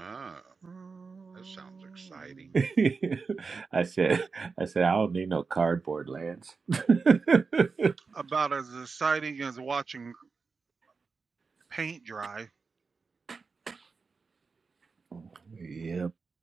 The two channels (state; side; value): quieter; left; 4.7 dB